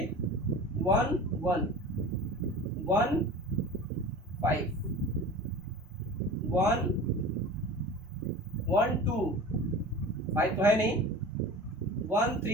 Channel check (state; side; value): normal; both; correlation 0.36